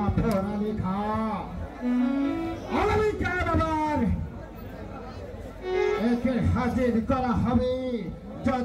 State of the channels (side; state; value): both; identical; correlation 1.00